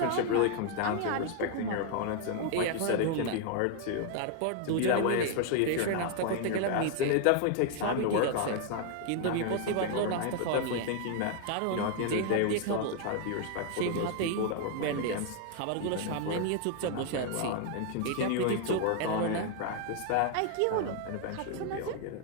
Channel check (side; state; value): both; different; correlation 0.00